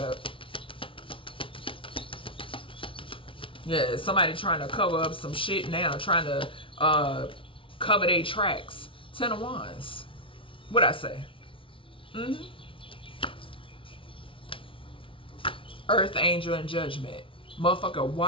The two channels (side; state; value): right; late; 0.25 ms